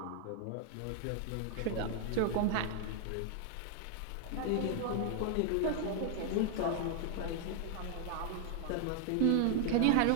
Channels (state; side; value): different; both; correlation 0.00